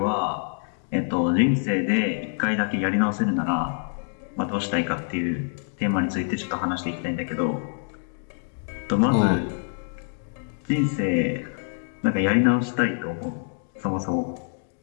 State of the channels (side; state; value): right; silent; digital silence